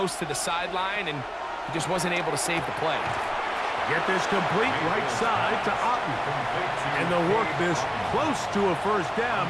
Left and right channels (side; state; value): both; identical; correlation 1.00